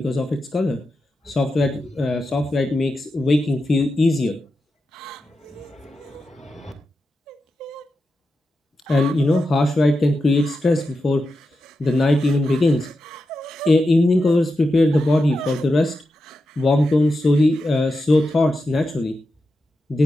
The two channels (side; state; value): both; normal; correlation 0.89